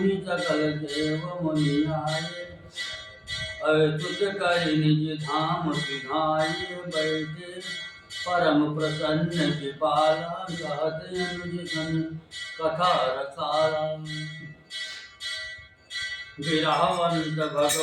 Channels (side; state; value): both; identical; correlation 1.00